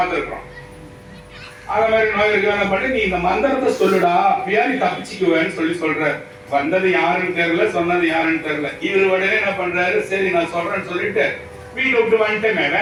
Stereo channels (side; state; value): both; identical; correlation 1.00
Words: அத மாதிரி நோய் இருக்கு பண்ணி, நீ இந்த மந்திரத்தை சொல்லுடா, அப்படியா நீ தப்பிச்சுக்குவேன்னு சொல்ற. வந்தது யாருன்னு தெரியல, சொன்னது யாருன்னு தெரியல. இவர் உடனே என்ன பண்றாரு, சரி நான் சொல்றேன்னு சொல்லிட்டு வீட்டை விட்டு வந்துட்டேங்க,